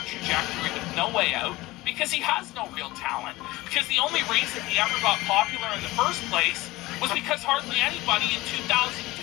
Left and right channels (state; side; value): quieter; right; 19.4 dB